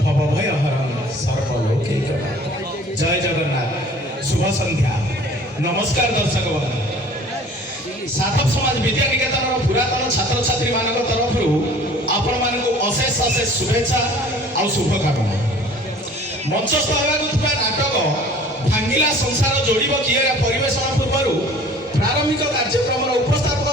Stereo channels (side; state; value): both; normal; correlation 0.49